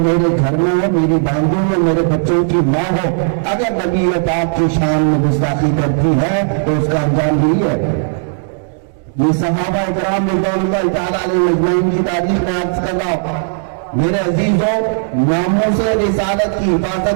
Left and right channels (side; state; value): left; silent; digital silence